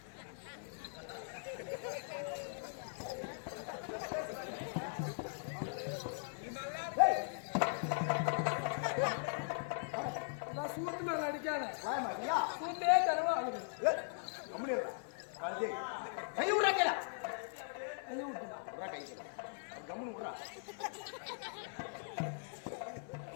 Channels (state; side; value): silent; right; 51 dB below the other